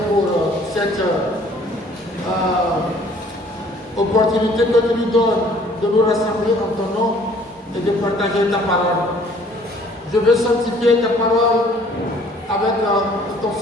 pour cette opportunité que tu nous donnes de nous rassembler en ton nom et de partager ta parole. Je veux sanctifier ta parole avec ton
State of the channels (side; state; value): both; normal; correlation 0.56